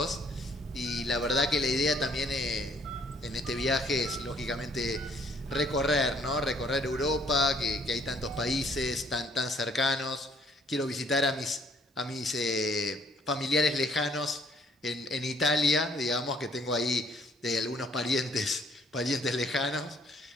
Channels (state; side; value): normal; both; correlation 0.63